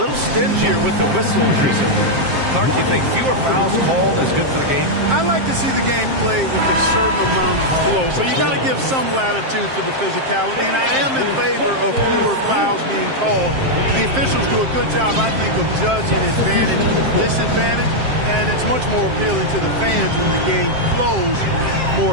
little stingier with the whistles recently. Clark, you think fewer fouls called is good for the game? I like to see the game played with a certain amount of flow. So you got to give some latitude to the physicality. And I am in favor of fewer fouls being called. The officials do a good job, I think, of judging advantage, disadvantage. And it's much more appealing to the fans when the game flows more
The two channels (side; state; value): left; late; 7.6 ms